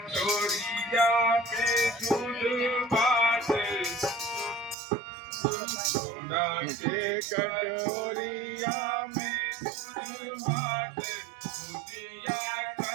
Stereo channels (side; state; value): left; drops out; at 4.8 s